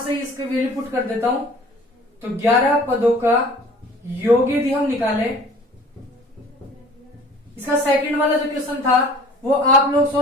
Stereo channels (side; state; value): both; normal; correlation 0.48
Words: इसके वैल्यू पुट कर देता हूं। तो 11 पदों का योग यदि हम निकालें, इसका सेकंड वाला जो क्वेश्चन था वो आप लोग